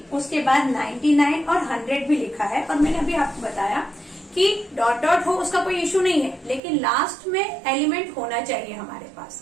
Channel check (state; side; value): drops out; left; at 6.6 s